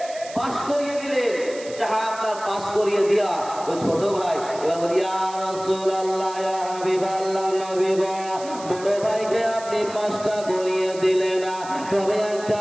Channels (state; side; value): noise; right; hiss, 16 dB below the sound